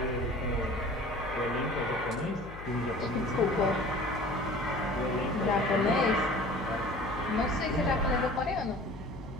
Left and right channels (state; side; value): noise; left; hum, 14 dB below the sound